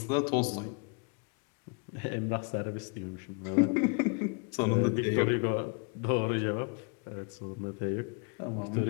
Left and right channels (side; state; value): right; quieter; 34.9 dB